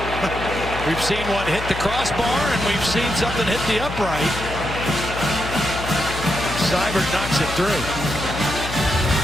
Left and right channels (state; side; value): noise; left; hum, 8 dB below the sound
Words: We've seen one hit the crossbar, and we've seen something hit the upright. Seibert knocks it through.